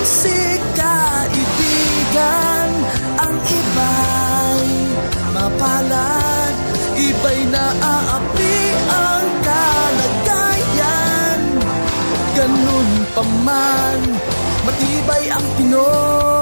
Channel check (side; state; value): both; inverted; correlation -1.00